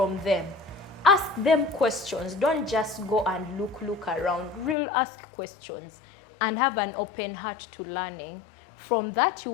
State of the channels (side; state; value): right; drops out; at 4.8 s